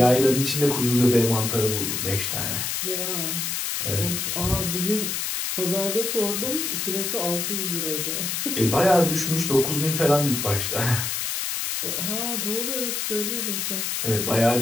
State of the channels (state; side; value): noise; left; hiss, 1 dB below the sound